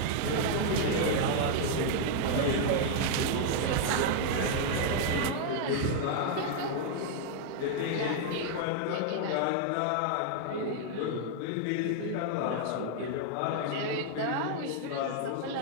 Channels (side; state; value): both; different; correlation 0.00